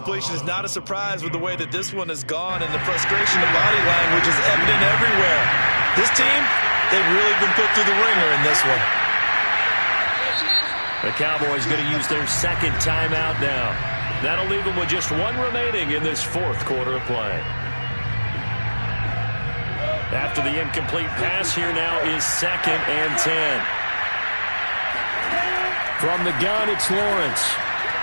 is not a surprise with the way that this one has gone, and the frustration of body language is evident everywhere. This team, they've really been put through the ringer in this one. The Cowboys going to use their second timeout now. That'll leave them with just 1 remaining in this 4th quarter of play. After the incomplete pass, here now is 2nd and 10. From the gun, it's Lawrence.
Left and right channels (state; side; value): inverted; both; correlation -1.00